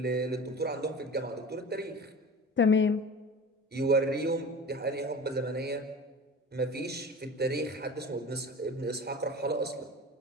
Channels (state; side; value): normal; both; correlation 0.36